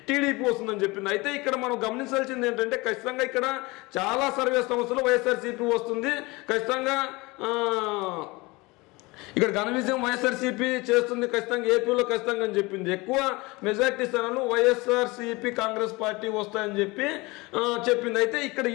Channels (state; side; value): quieter; right; 23.7 dB